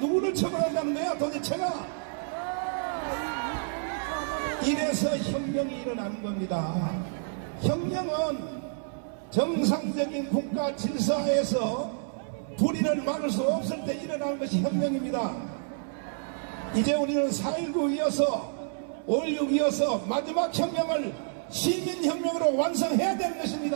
처벌한다는 거야 도대체가? 이래서 혁명이 일어나는 겁니다. 혁명은 정상적인 국가 질서에서 불의를 막을 수 없을 때 일어나는 것이 혁명입니다. 이제 우리는 4.19 이어서 5.16 이어서 마지막 혁명을 시민혁명으로 완성해야 되는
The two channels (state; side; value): silent; left; 59 dB below the other